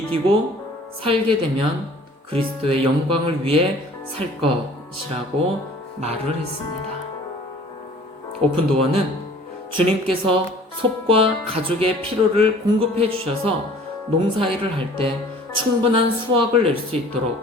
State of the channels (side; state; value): both; normal; correlation 0.50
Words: 살게 되면 그리스도의 영광을 위해 살 것이라고 말을 했습니다. 오픈도어는 주님께서 솝과 가족의 필요를 공급해 주셔서 농사일을 할 때 충분한 수확을 낼 수